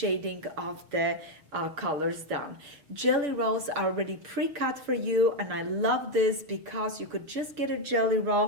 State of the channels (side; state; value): left; late; 6.5 ms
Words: of the colors down. Jelly rolls are already pre-cut for you, and I love this because you could just get a jelly